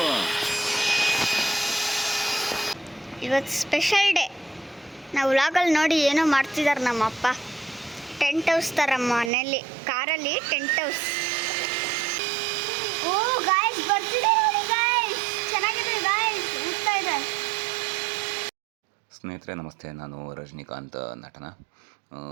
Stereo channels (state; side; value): drops out; left; at 9.3 s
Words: ಇವತ್ತು ಸ್ಪೆಷಲ್ ಡೇ. ನಾವು ವ್ಲಾಗಲ್ಲಿ ನೋಡಿ ಏನೋ ಮಾಡ್ತಿದ್ದಾರೆ ನಮ್ಮಪ್ಪ. ಟೆಂಟ್ ಹೌಸ್ ಥರ ಮನೇಲಿ ಕಾರಲ್ಲಿ ಟೆಂಟ್ ಹೌಸ್. ಓ ಗಾಯ್ಸ್ ಬರ್ತಿದೆ ನೋಡಿ ಗಾಯ್ಸ್, ಚೆನ್ನಾಗಿದೆ ಗಾಯ್ಸ್, ಹೋಗ್ತಾ ಇದೆ. ಸ್ನೇಹಿತರೆ ನಮಸ್ತೆ, ನಾನು ರಜನಿಕಾಂತ್ ನಟನ.